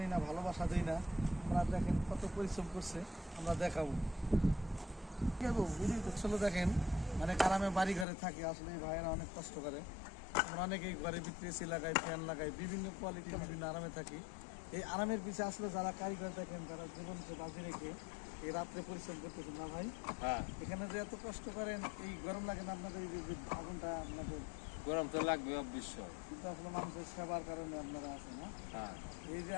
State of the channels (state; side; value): drops out; right; at 8.1 s